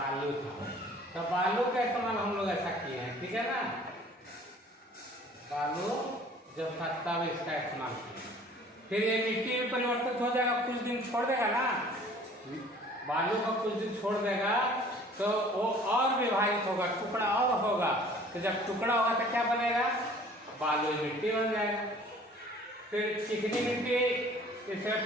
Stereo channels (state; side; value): normal; both; correlation 0.51